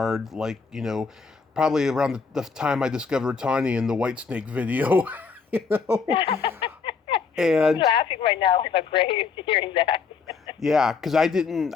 probably around the time I discovered Tawny in the Whitesnake video, you know? I'm And laughing right now in my grave hearing that. yeah, because I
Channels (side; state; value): right; quieter; 5.3 dB